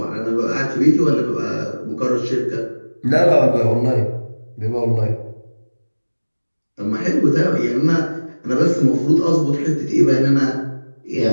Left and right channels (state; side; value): inverted; both; correlation -1.00